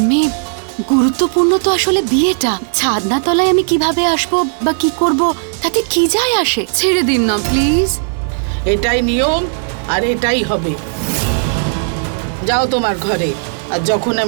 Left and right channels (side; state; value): left; silent; digital silence